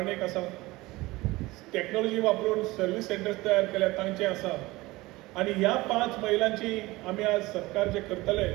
आसा. टेक्नॉलॉजी वापरून सर्व्हिस सेंटर्स तयार केल्या तांचें आसा. आणि ह्या 5 महिलांची आमी आज सत्कार जे करतले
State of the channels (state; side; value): quieter; left; 20.4 dB